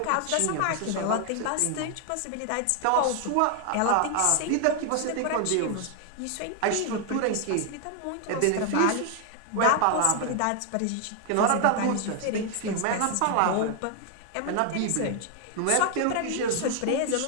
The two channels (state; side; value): different; both; correlation 0.00